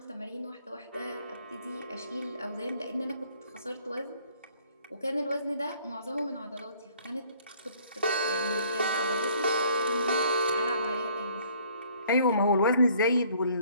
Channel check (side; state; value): both; inverted; correlation -0.59